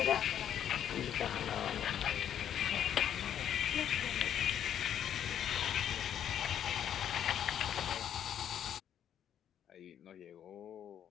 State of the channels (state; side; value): quieter; right; 9.7 dB